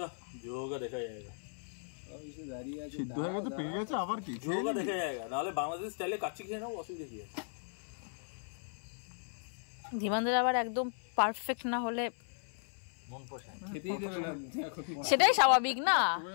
যায়গা, সিদ্ধ হয়ে গেছে, পেকে গেছে, আবার কি দেখা যায়গা। নাহলে বাংলাদেশ স্টাইলে কাচ্চি খেয়ে নাও, অসুবিধা কি আছে? ধীমানদের আবার একদম পারফেক্ট না হলে মন পোষায় খেতেই দেবে না। সেটাই স্বাভাবিক না।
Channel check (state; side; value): silent; right; 54 dB below the other